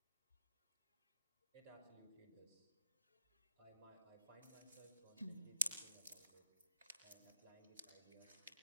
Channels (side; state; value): both; inverted; correlation -0.71